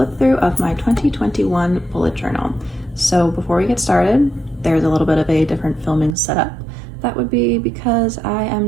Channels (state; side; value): drops out; left; at 6.2 s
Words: through of my 2021 bullet journal. So before we get started, there's a little bit of a different filming setup. That would be because I am